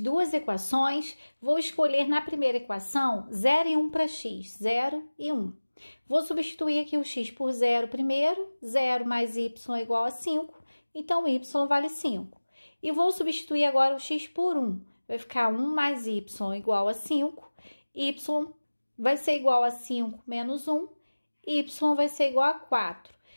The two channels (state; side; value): inverted; both; correlation -1.00